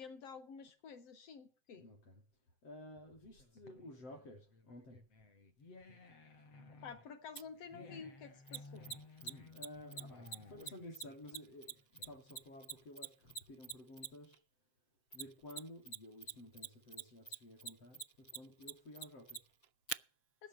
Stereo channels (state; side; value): late; right; 7.7 ms